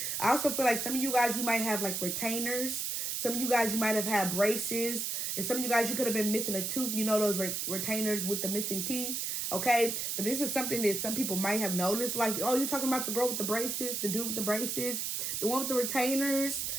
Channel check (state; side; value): noise; right; hiss, 1 dB below the sound